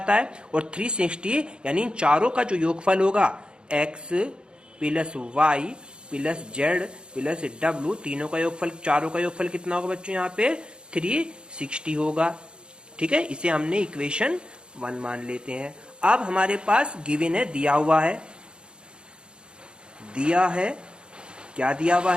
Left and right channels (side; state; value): left; late; 0.052 ms